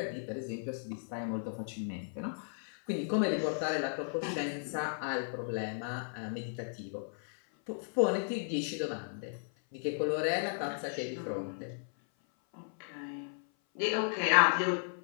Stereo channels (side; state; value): right; silent; 55 dB below the other